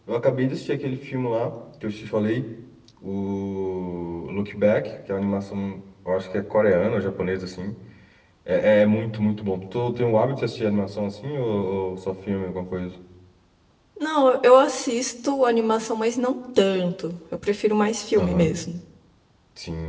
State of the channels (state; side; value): identical; both; correlation 1.00